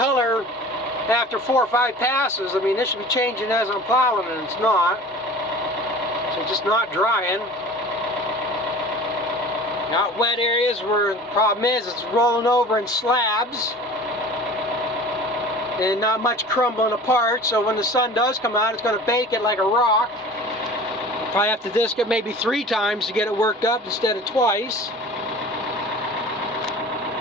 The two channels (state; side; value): normal; both; correlation 0.41